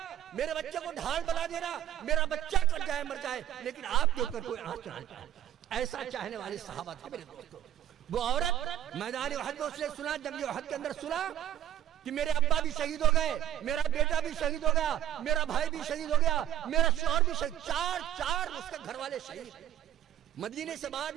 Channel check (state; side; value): quieter; left; 11.7 dB